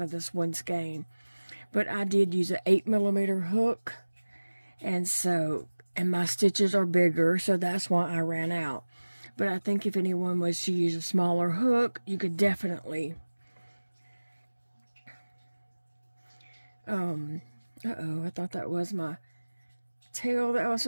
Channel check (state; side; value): inverted; both; correlation -1.00